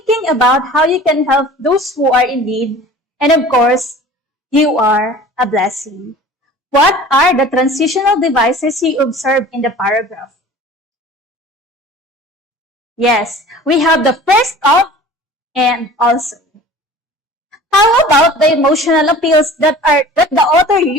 about how you can help those who are in need, and of course, you are a blessing. What are the transitional devices you observe in the paragraph? Yes, we have the first of and also. How about the emotional appeals that the author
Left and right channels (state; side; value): normal; both; correlation 0.43